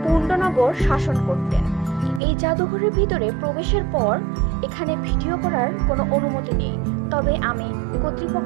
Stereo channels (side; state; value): left; drops out; at 2.2 s